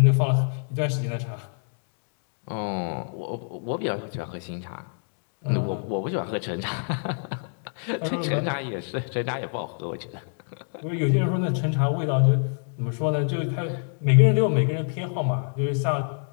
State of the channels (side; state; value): right; silent; 59 dB below the other